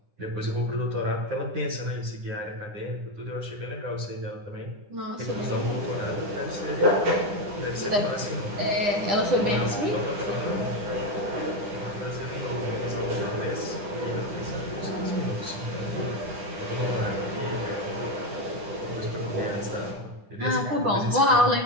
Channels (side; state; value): left; late; 10 ms